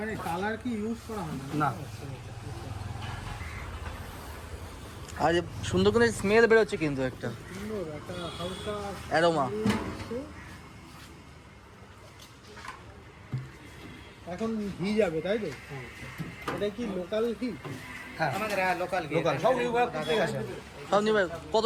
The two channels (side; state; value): both; identical; correlation 1.00